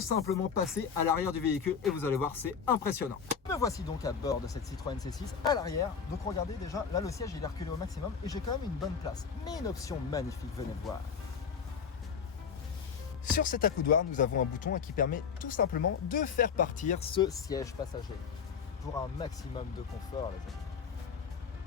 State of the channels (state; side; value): quieter; right; 6.5 dB